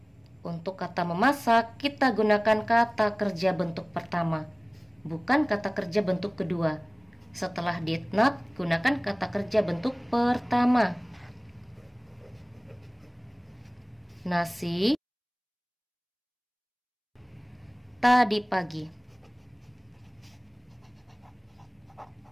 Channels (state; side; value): identical; both; correlation 1.00